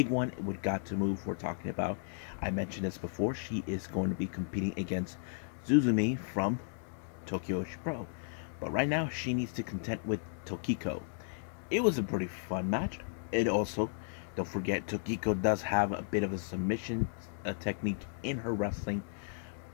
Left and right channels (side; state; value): right; silent; digital silence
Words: one with Got to Move we're talking about. I mentioned this before. She is going to be competing against Zuzumi from Tokyo Pro. But right now, she needs to contend with Tokiko. It was a pretty fun match. It also, don't forget, Tokiko does have a bit of a submission technique in her wrestling.